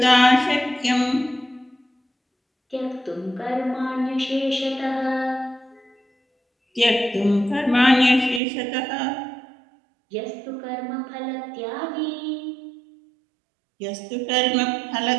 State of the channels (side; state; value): left; drops out; at 8.4 s